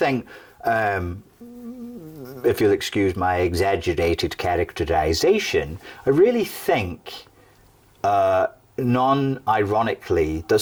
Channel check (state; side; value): identical; both; correlation 1.00